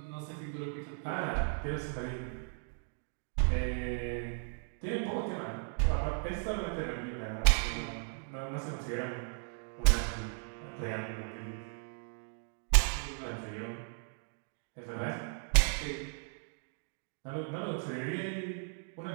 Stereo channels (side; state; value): left; silent; 54 dB below the other